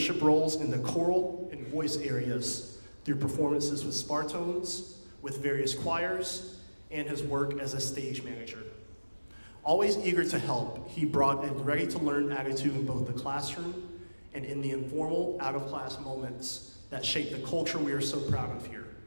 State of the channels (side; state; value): both; inverted; correlation -1.00